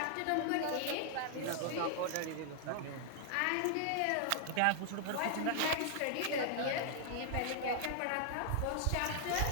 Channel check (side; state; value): both; different; correlation 0.00